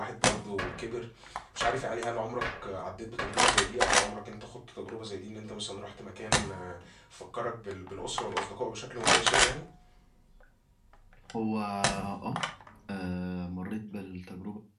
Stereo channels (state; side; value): identical; both; correlation 1.00